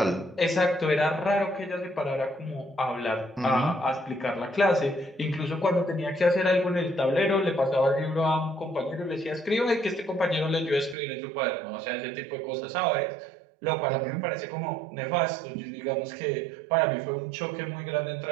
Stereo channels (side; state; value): left; drops out; at 11.0 s